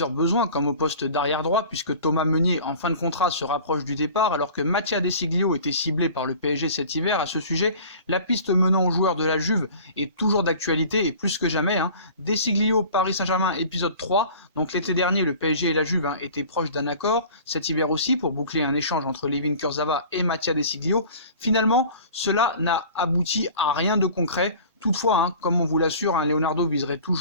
besoins comme au poste d'arrière droit puisque Thomas Meunier en fin de contrat se rapproche du départ alors que Mattia De Sciglio était ciblé par le PSG cet hiver. À ce sujet, la piste menant aux joueurs de la Juve est toujours d'actualité et plus que jamais. De Sciglio, Paris Saint-Germain, épisode 3, donc l'été dernier le PSG et la Juve étaient proches d'un accord, cet hiver aussi pour boucler un échange entre Layvin Kurzawa et Mattia De Sciglio. Finalement, cela n'a abouti à rien de concret. Toutefois, comme on vous l'assure, Leonardo viserait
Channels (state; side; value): inverted; both; correlation -0.43